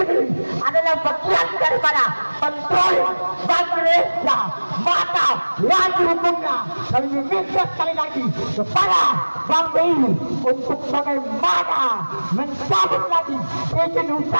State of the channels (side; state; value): both; inverted; correlation -1.00